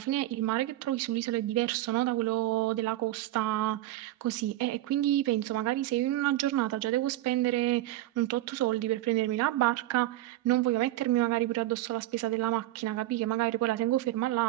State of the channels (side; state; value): left; quieter; 15.5 dB